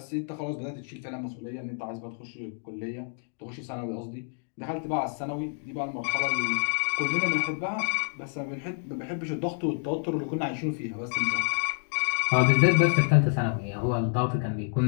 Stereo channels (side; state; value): right; silent; 59 dB below the other